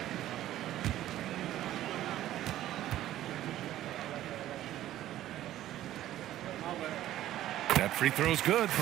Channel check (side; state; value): left; quieter; 13.4 dB